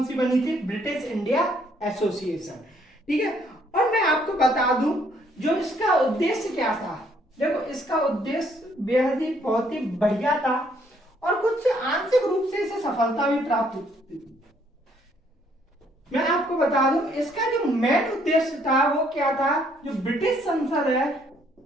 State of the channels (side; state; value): both; normal; correlation 0.67